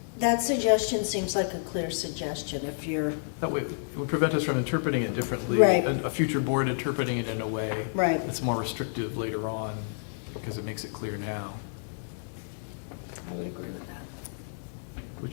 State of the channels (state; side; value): silent; right; digital silence